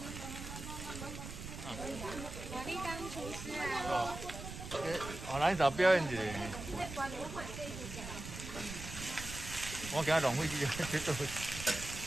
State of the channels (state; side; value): noise; right; rumble, 9 dB below the sound